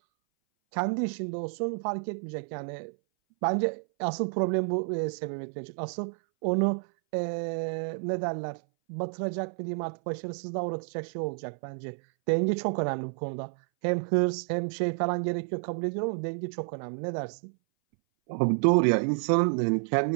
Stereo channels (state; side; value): silent; left; 58 dB below the other